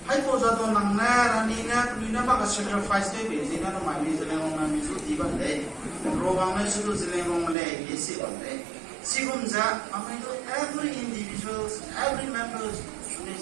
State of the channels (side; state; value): left; drops out; at 7.6 s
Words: hai posa tu nangna, ranina, amina baga sacrifice tu bezi, na namanya seleng orang misu tiba deh, program misu tu seleng orang leh, yesi bande. Sikumza, amina every individuals, every members, ni